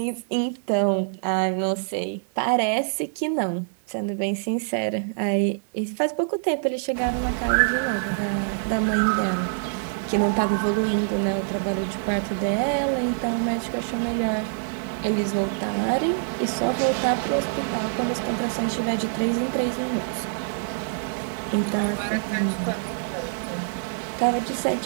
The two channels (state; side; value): silent; left; digital silence